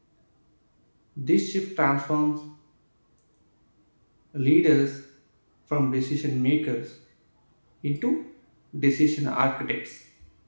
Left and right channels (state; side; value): inverted; both; correlation -1.00